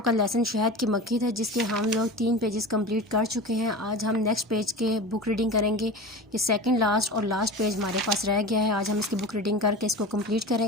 کا لیسن شہد کی مکھی تھا، جس کے ہم لوگ 3 پیجز کمپلیٹ کر چکے ہیں. آج ہم نیکسٹ پیج کے بک ریڈنگ کریں گے. یہ سیکنڈ لاسٹ اور لاسٹ پیج ہمارے پاس رہ گیا ہے. آج ہم اس کی بک ریڈنگ کر کے اس کو کمپلیٹ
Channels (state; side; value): normal; both; correlation 0.31